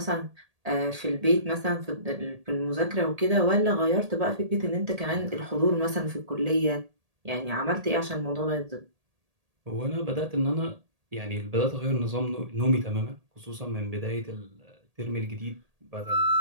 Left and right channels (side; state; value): left; late; 1.8 ms